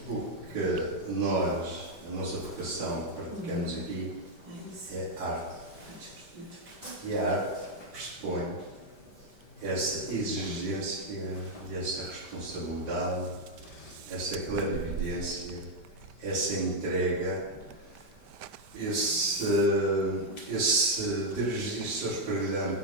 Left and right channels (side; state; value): left; late; 5.1 ms